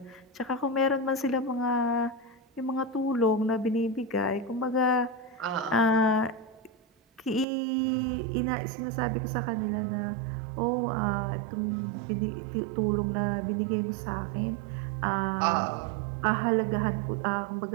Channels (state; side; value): drops out; left; at 7.5 s